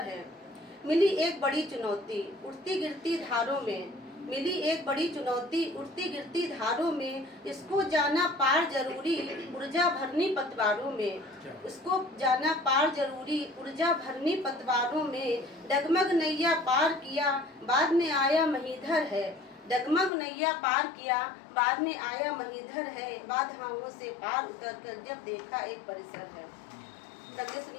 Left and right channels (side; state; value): right; drops out; at 20.1 s